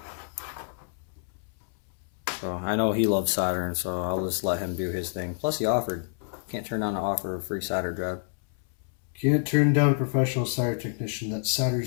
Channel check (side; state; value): right; silent; 59 dB below the other